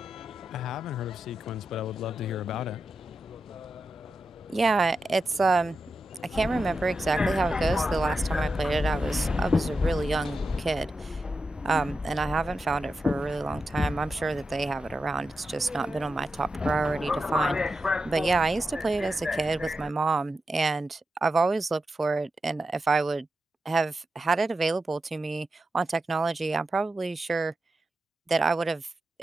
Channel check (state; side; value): normal; both; correlation 0.89